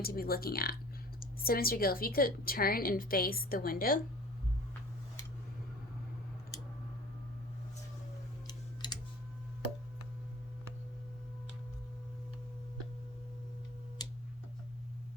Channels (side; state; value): both; normal; correlation 0.45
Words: to be looking at. So Mr. Gill, if you could turn and face the window.